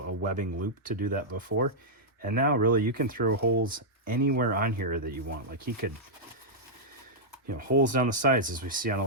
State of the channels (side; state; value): both; normal; correlation -0.08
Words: webbing loop to do that before. And now really you can throw holes anywhere on here that you want. Like he could, holes down the sides, as we see on a